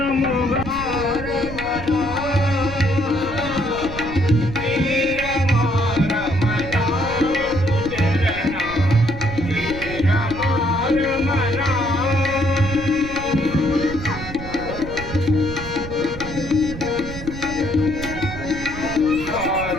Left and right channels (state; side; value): noise; right; rumble, 10 dB below the sound